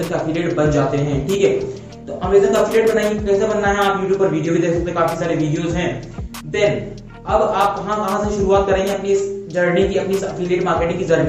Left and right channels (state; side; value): identical; both; correlation 1.00